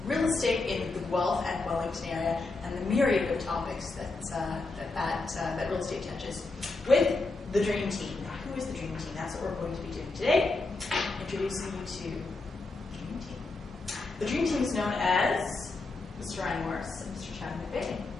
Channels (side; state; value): right; quieter; 3.5 dB